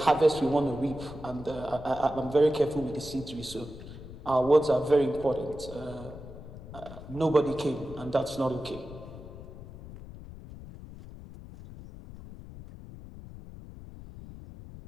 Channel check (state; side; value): noise; left; rumble, 14 dB below the sound